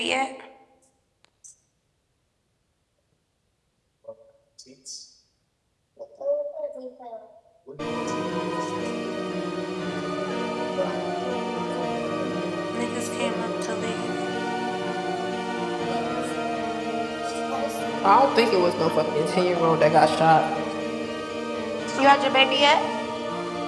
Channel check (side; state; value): both; identical; correlation 1.00